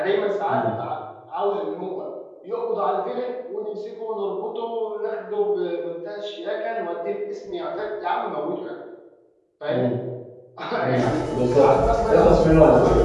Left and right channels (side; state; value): both; identical; correlation 1.00